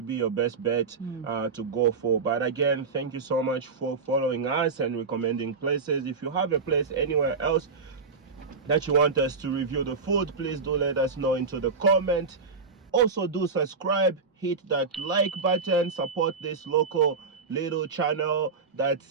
your best bet to go for. But again, thank you so much for following us and recommending places. If you have a place anywhere else that you want us to review the food, please do let us know into the comment. Also do subscribe, hit that like button, support this local little channel that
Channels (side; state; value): left; quieter; 4.8 dB